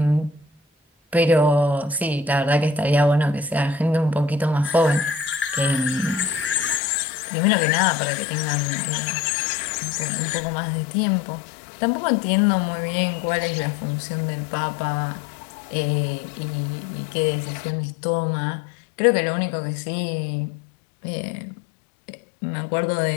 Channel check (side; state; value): right; drops out; at 6.8 s